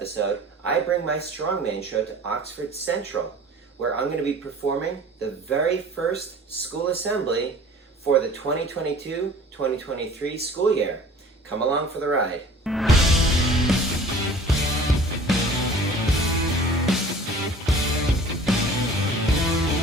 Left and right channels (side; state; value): both; normal; correlation 0.46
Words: I bring my strongman show to Oxford Central, where I'm going to be performing the very first school assembly for the 2022-2023 school year. Come along for the ride.